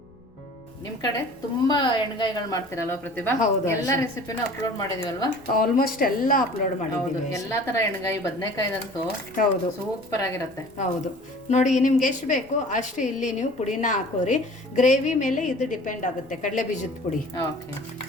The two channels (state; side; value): noise; left; rumble, 27 dB below the sound